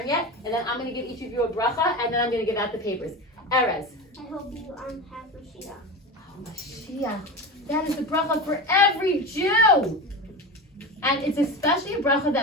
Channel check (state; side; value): normal; both; correlation 0.25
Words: yet, and then I'm going to give each of you a bracha, and then I'm going to give out the papers. Erez. I hope you have Mashiach. Oh, Mashiach. That is the bracha for every Jew. And it's especially a bracha